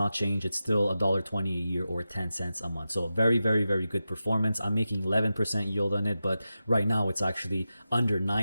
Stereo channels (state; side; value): inverted; both; correlation -0.92